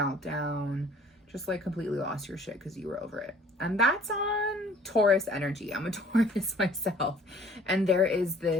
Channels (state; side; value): normal; both; correlation 0.54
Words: just like completely lost your shit because you were over it. And that's on Taurus energy. I'm a Taurus myself. And there is